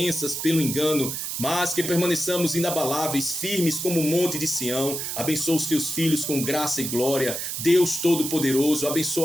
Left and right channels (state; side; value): noise; right; hiss, 4 dB below the sound